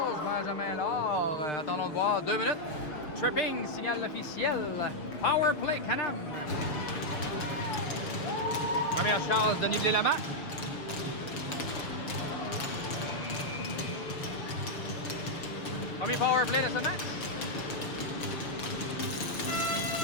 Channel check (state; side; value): late; right; 6.4 ms